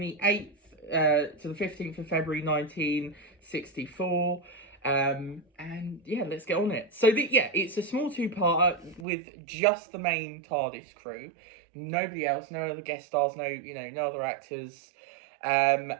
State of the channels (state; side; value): drops out; left; at 9.1 s